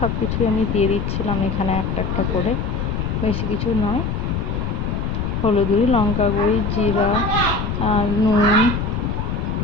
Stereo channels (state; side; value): noise; left; rumble, 1 dB below the sound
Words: সব কিছুই আমি দিয়ে দিচ্ছিলাম এখানে একটা একটা করে, বেশি কিছু নয়। হলুদ গুঁড়ি, লঙ্কা গুঁড়ি, জিরা, নুন,